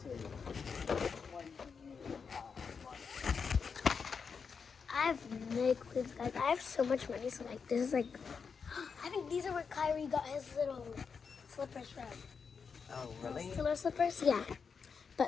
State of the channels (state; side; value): quieter; right; 5.8 dB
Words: to- which one do you want? I have no clue, guys. I have so much money, so like, this is like, I think these are where Kyrie got his little slippers from. Oh, really? Killer slippers, yeah.